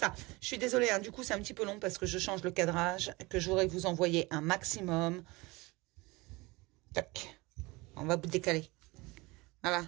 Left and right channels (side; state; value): left; quieter; 23.5 dB